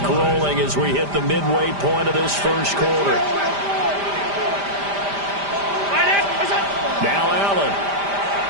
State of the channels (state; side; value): late; left; 5.0 ms